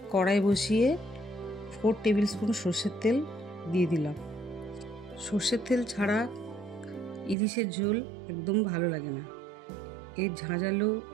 কড়াই বসিয়ে 4 টেবিল স্পুন সর্ষের তেল দিয়ে দিলাম। সর্ষের তেল ছাড়া ইলিশের ঝোল একদম ভালো লাগে না। এর ঝাঁঝালো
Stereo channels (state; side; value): drops out; left; at 7.4 s